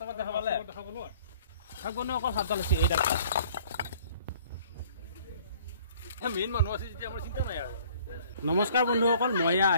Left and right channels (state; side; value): inverted; both; correlation -0.55